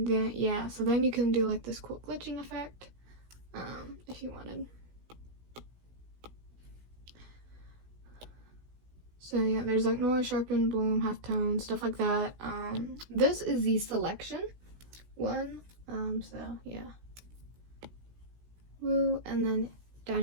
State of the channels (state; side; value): late; left; 16 ms